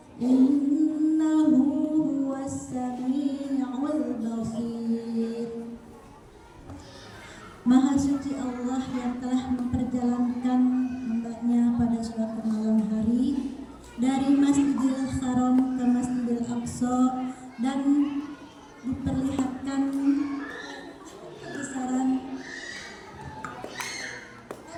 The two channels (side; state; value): both; identical; correlation 1.00